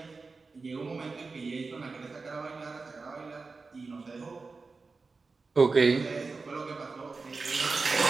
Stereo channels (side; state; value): left; quieter; 4.2 dB